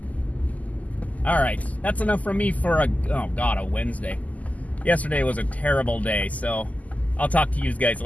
All right, that's enough from me for a Wednesday. Yesterday was a terrible day, so I'll talk to you guys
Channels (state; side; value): late; right; 0.075 ms